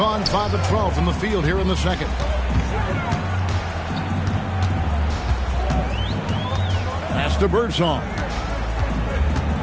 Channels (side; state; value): both; identical; correlation 1.00